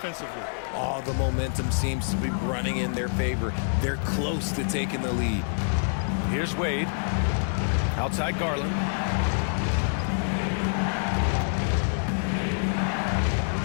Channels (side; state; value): right; silent; digital silence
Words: All the momentum seems to be running in their favor. They're close to taking the lead. Here's Wade. Outside Garland.